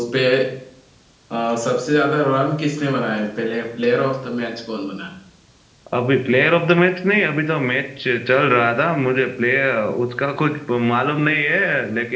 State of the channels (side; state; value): both; identical; correlation 1.00